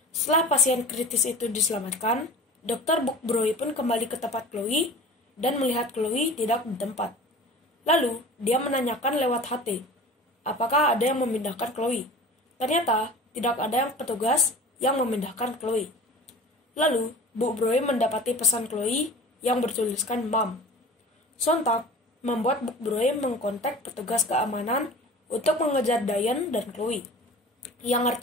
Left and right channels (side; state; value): both; normal; correlation 0.39